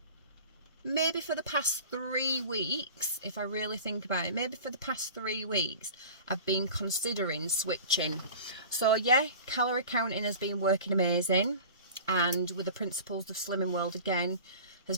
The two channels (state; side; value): inverted; both; correlation -0.38